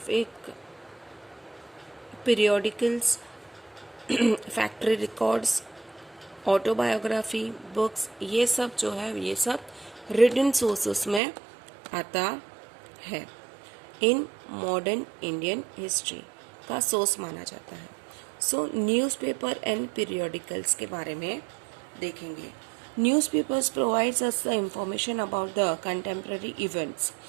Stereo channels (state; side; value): drops out; left; at 11.2 s